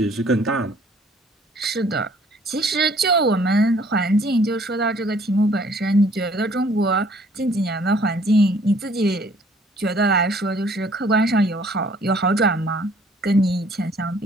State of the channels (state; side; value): normal; both; correlation 0.59